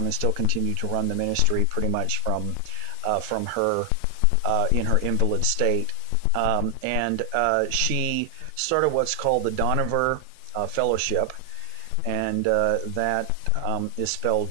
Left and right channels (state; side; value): different; both; correlation 0.00